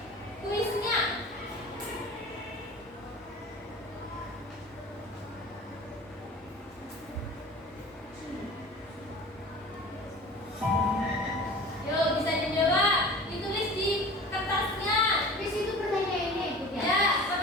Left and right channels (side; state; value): both; normal; correlation 0.40